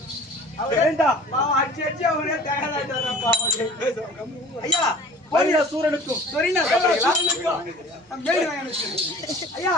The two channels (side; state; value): both; normal; correlation 0.46